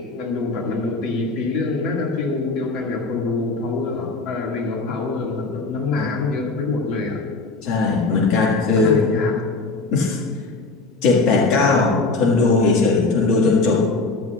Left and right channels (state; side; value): quieter; right; 3.6 dB